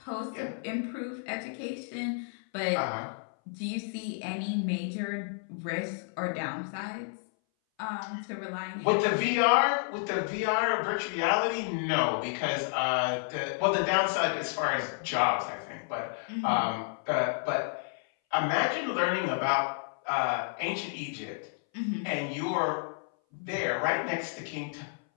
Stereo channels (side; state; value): right; silent; 57 dB below the other